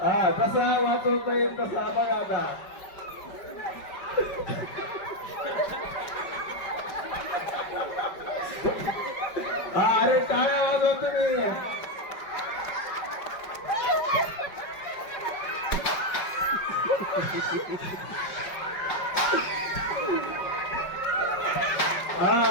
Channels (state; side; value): late; right; 5.3 ms